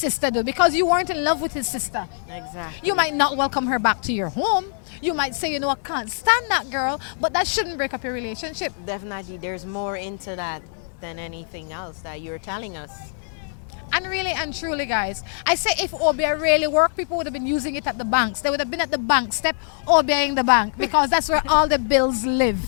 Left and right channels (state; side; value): silent; right; digital silence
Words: did because you weren't in love with his sister. Exactly. You might not welcome her back to your home. You might say, you know, I can't stand that girl, but that shouldn't break up your relationship. Definitely, there's more into that than anything else that you're telling us. And really and truly, guys, I say if OBI really worked, people would have been using it at the banks. They would have been at the bank step OBIing the bank because that's where all the bills live.